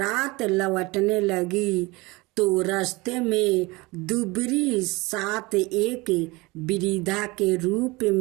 लौटने लगी तो रास्ते में दुबरी सात एक वृद्धा के रूप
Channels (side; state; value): left; quieter; 23.3 dB